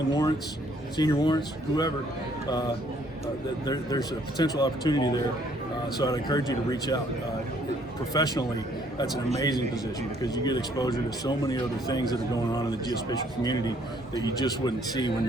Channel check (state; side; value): normal; both; correlation 0.64